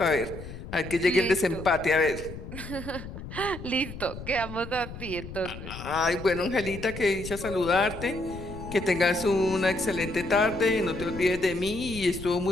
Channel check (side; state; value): left; noise; rumble, 11 dB below the sound